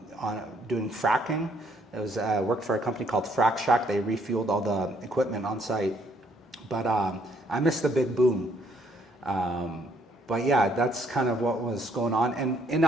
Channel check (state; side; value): normal; both; correlation 0.67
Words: doing fracking. It was worked for a company called Frac Shack. They refueled all the equipment on site. But I missed the big boom. But yeah, that's kind of what was going on. And in